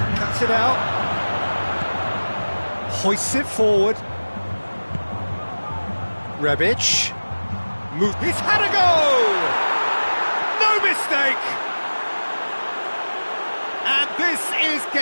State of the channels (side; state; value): both; inverted; correlation -1.00